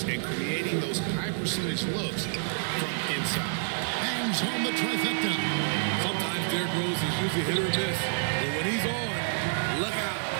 and creating those high percentage looks from inside. Bangs home the trifecta. Sometimes Derrick Rose is usually hit or miss, but when he's on, look out.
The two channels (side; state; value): left; silent; 59 dB below the other